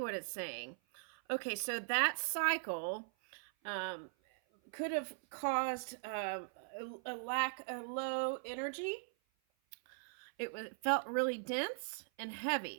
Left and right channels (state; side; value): silent; left; 51 dB below the other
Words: it's saying. Okay, so that cycle could have caused a lack of low energy. It felt really dense and